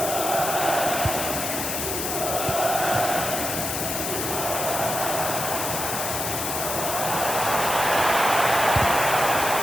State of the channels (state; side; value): noise; left; hiss, 3 dB below the sound